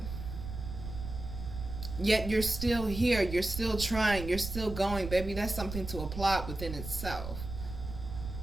Yet you're still here. You're still trying. You're still going, baby. That's something to applaud within itself.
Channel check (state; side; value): noise; right; rumble, 8 dB below the sound